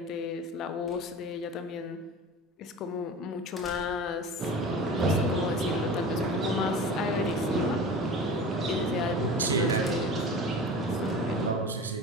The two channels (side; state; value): both; normal; correlation 0.35